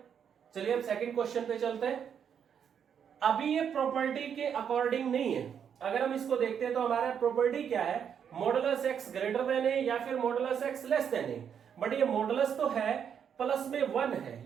चलिए अब सेकंड क्वेश्चन पे चलते हैं। अभी ये प्रॉपर्टी के अकॉर्डिंग नहीं है। अगर हम इसको देखते हैं तो हमारा प्रॉपर्टी क्या है, मॉडुलस x ग्रेटर देन ए या फिर modulus x less than A. But ये मॉडुलस तो है, प्लस में 1 है,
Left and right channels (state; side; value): quieter; left; 7.9 dB